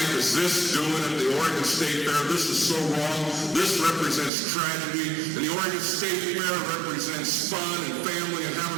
is this doing at the Oregon State Fair? This is so wrong. This represents tragedy. And the Oregon State Fair represents fun and family and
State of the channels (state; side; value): drops out; left; at 4.3 s